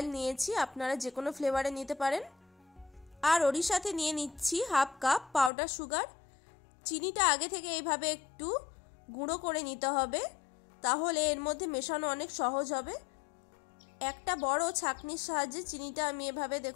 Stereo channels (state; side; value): drops out; right; at 5.5 s